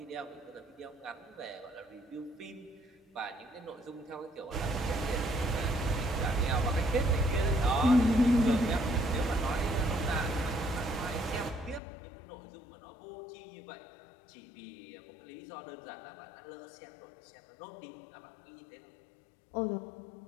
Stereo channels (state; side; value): drops out; right; at 11.8 s